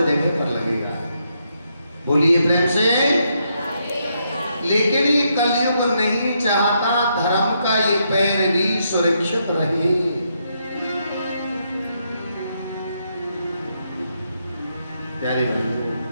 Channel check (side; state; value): both; inverted; correlation -0.78